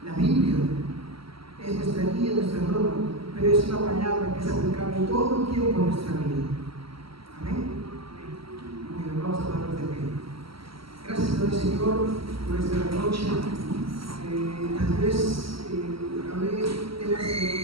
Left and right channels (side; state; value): left; late; 0.75 ms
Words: La Biblia es nuestra guía, nuestra norma, pero es una palabra que es aplicable todo el tiempo en nuestra vida. Amén. Muy bien, vamos a darnos de pie. Gracias, Señor, por esta noche.